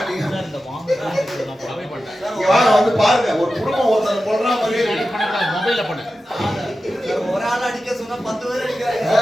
வந்து பாருங்க ஒரு குடும்பம் ஒருத்தர் போடுற மாதிரி மொபைல்ல பண்ணு. ஒரு ஆள் அடிக்க சொன்னா 10 பேர் அடிக்கிறாங்க.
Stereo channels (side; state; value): both; normal; correlation 0.93